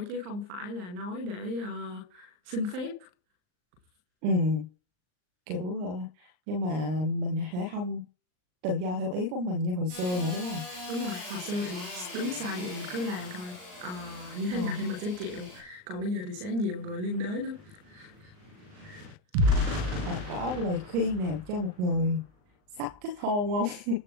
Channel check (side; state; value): left; late; 39 ms